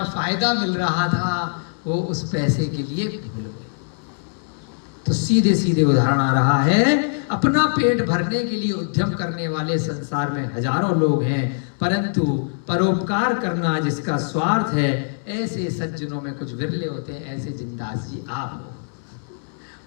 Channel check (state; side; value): silent; right; 64 dB below the other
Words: फायदा मिल रहा था, वो उस पैसे के लिए भूल गए। तो सीधे सीधे उदाहरण आ रहा है, अपना पेट भरने के लिए उद्यम करने वाले संसार में हजारों लोग हैं, परंतु परोपकार करना जिसका स्वार्थ है, ऐसे सज्जनों में कुछ विरले होते हैं। ऐसे जिंदास जी आप हो,